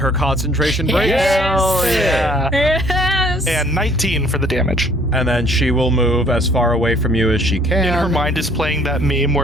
concentration breaks. Yeah. Yes. And 19 for the damage. And then she will move as far away from you as she can. In her mind is playing that meme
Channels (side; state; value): both; normal; correlation 0.59